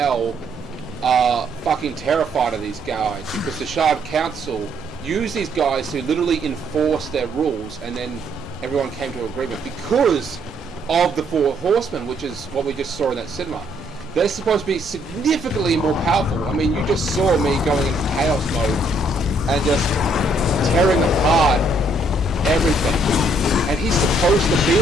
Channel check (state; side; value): normal; both; correlation 0.69